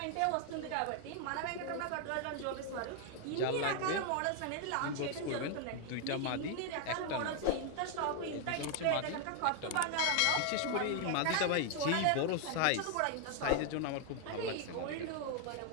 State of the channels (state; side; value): different; both; correlation 0.00